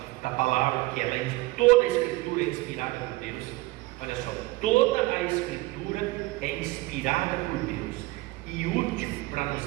da palavra, que ela, toda a escritura é inspirada por Deus. Olha só, toda a escritura é inspirada por Deus e útil para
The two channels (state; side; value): quieter; left; 20.3 dB